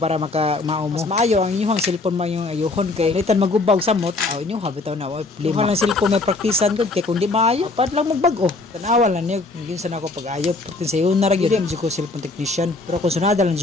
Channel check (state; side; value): quieter; right; 3.4 dB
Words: mao mo. Mas maayo ang inyong cellphone man yung ayuhon kay litan magubag samot. Aw inyo habitaw na oy problema. Lang cellphone may praktisan gud kay kun di maayo pad lang magbag-o. Tanawa lang niya yun sa nako pag-ayo. Pagtin sa yun na ra gyud ko cellphone technician. Pero kung sunada lang